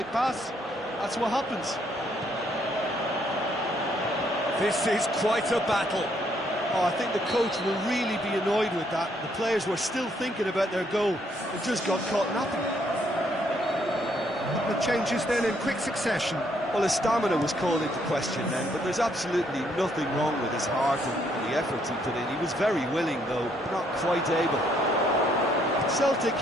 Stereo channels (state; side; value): normal; both; correlation 0.70